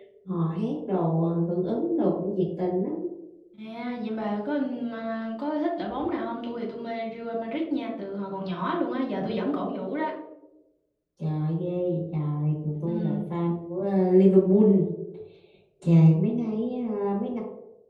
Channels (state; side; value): identical; both; correlation 1.00